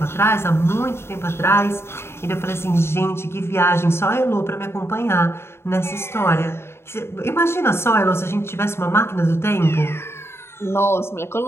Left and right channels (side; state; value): right; late; 0.12 ms